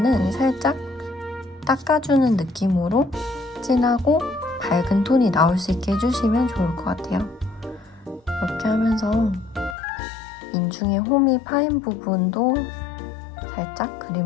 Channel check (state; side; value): drops out; right; at 9.8 s